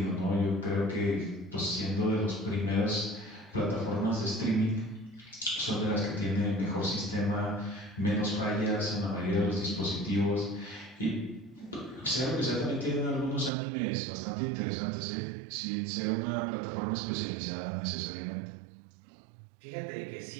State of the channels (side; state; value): left; drops out; at 13.5 s